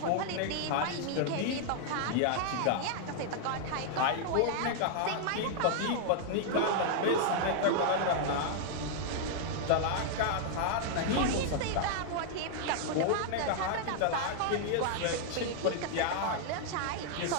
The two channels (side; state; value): both; different; correlation -0.01